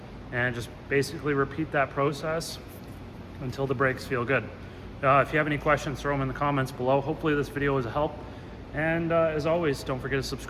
and just basically repeat that process until the brakes feel good. If you have any questions, throw them in the comments below. Hopefully this video was a help. And as always, don't forget to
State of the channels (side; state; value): both; identical; correlation 1.00